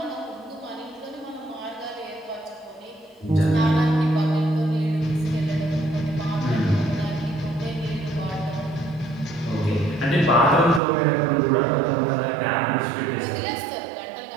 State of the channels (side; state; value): left; drops out; at 10.8 s